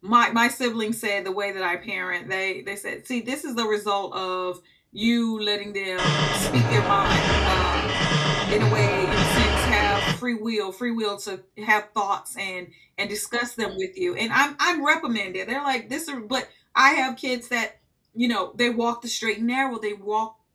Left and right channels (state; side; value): identical; both; correlation 1.00